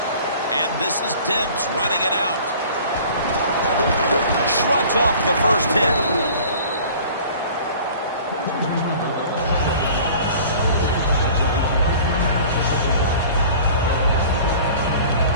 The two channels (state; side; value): inverted; both; correlation -0.46